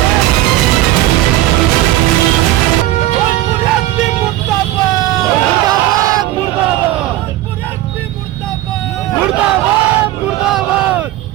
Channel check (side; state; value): left; quieter; 15.2 dB